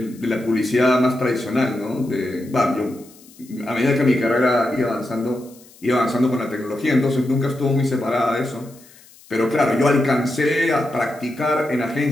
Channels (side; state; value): left; noise; hiss, 25 dB below the sound